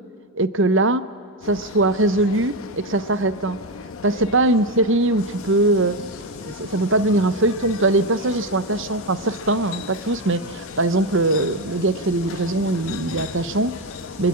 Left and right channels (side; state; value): both; normal; correlation 0.10